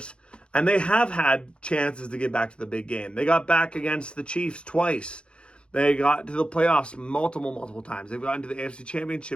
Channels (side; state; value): right; late; 0.056 ms